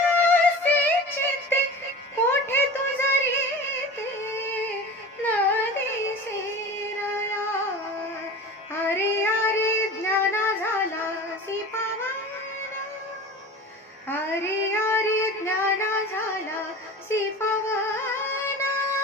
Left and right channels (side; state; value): both; normal; correlation 0.35